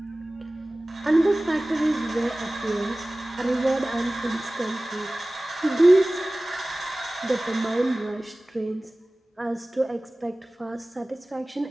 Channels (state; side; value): normal; both; correlation 0.98